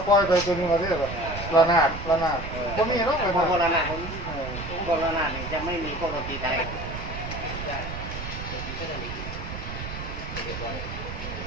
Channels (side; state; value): right; noise; rumble, 8 dB below the sound